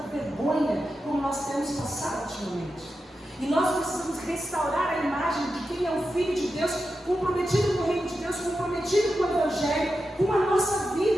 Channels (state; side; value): normal; both; correlation 0.90